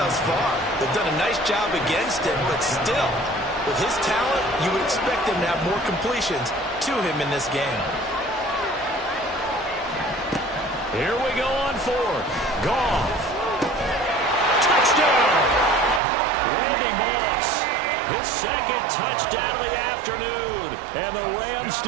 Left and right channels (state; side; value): drops out; left; at 16.0 s